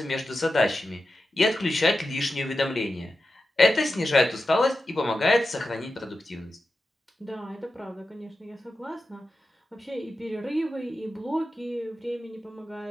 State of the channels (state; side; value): normal; both; correlation 0.91